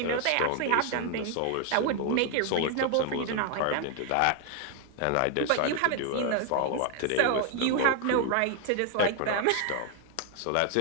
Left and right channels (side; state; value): both; different; correlation 0.00